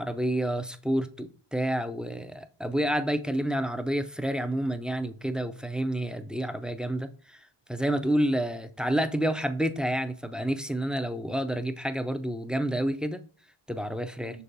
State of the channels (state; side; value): normal; both; correlation 0.88